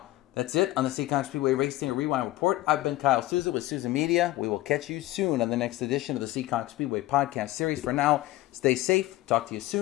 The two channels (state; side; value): quieter; right; 16.8 dB